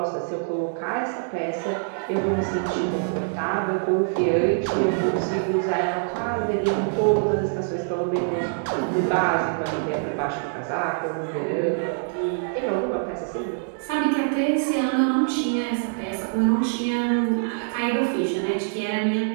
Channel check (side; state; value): left; silent; digital silence